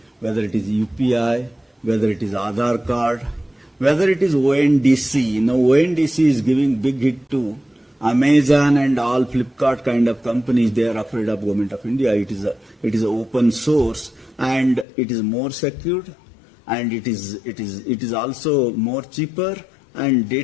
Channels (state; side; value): drops out; right; at 14.9 s